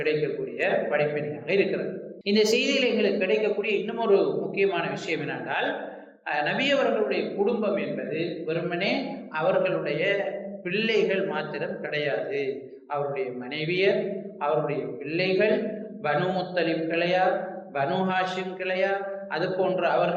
படிப்பினையாக இருக்கிறது. இந்த செய்தியில் எங்களுக்கு கிடைக்கக்கூடிய இன்னும் ஒரு முக்கியமான விஷயம் என்னென்றால், நபி அவர்களுடைய குடும்பம் என்பது வெறுமனே அவர்களுடைய பிள்ளைகள் மாத்திரம் கிடையாது. அவருடைய மனைவியர், அவருடைய பிள்ளைகள், பனு முத்தலிப் கிளையார், பனு ஹாஷிம் கிளையார், அது போன்ற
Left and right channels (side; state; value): both; identical; correlation 1.00